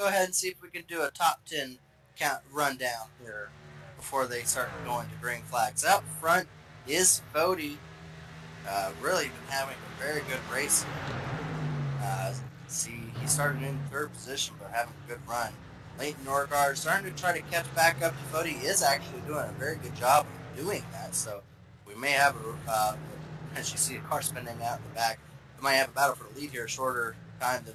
ahead and see if we can do a top 10 count rundown here before they start going to green flags. Out front is Fody. Really been having a very good race here. See, he started in 3rd position, but having a good run. Leighton Norgard starting to try to catch back up to Fody. He is actually doing a very good job of doing that. So we may have, as you see a car spinning out in the back, we might have a battle for the lead here, a shorter time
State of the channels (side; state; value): both; identical; correlation 1.00